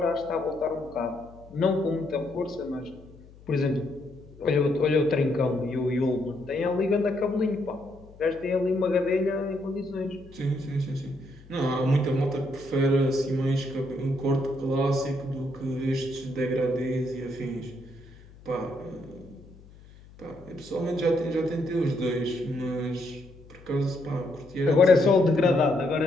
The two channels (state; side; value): noise; left; hum, 22 dB below the sound